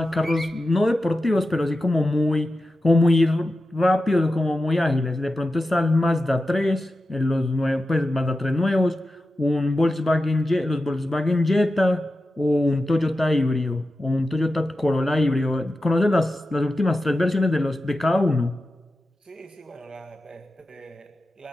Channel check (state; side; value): normal; both; correlation 0.92